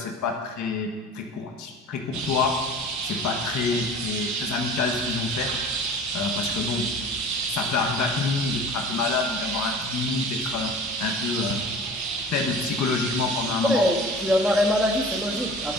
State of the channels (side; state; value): both; normal; correlation 0.41